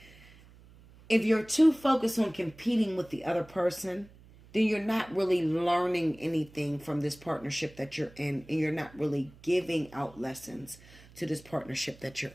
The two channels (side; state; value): right; noise; hum, 23 dB below the sound